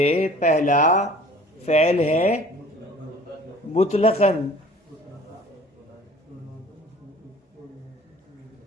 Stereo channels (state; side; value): normal; both; correlation 0.49